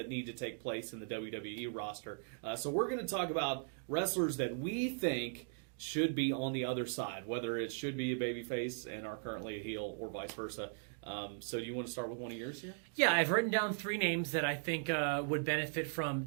need to take place in the WWE roster. So we're going to talk about wrestlers that we think should be on the other side, whether it should be a babyface and are currently a heel or vice versa. So do you want to start with one of yours here? Yeah, I've written down 3 names that I think would benefit from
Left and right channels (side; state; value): left; silent; digital silence